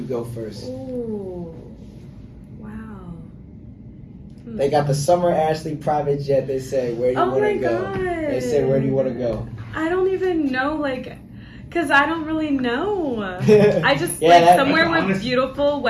go first? Ooh. Wow. They got the Summer Ashley private jet. They say, where do you Oh want my to go? God. They say, where do you want to go? I don't even know, because I don't really know. I just, Yeah, somewhere that's with honest. beautiful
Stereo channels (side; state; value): both; identical; correlation 1.00